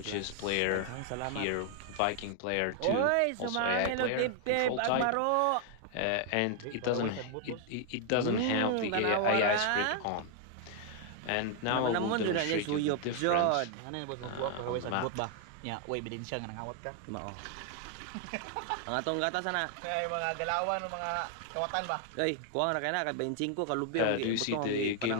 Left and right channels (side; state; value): both; different; correlation 0.00